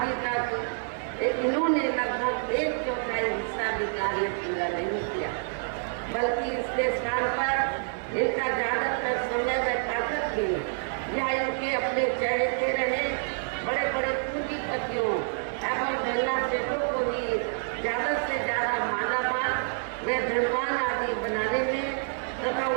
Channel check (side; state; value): left; silent; 59 dB below the other